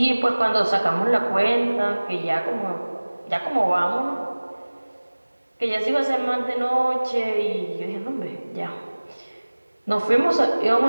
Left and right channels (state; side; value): inverted; both; correlation -1.00